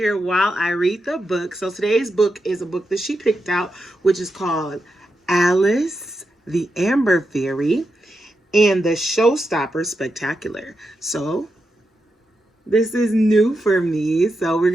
while I read the book. So today's book is a book that she picked out, which is called Alice the Amber Fairy and the Showstopper Spectacular. So this is new for me, so we're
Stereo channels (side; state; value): both; normal; correlation 0.86